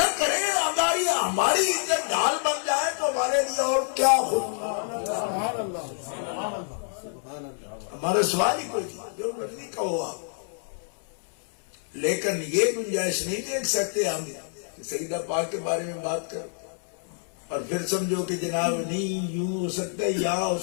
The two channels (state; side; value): silent; right; 60 dB below the other